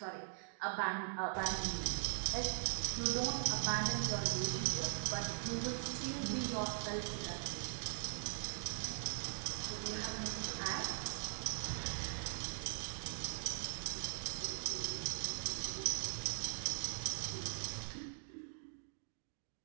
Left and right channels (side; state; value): left; silent; digital silence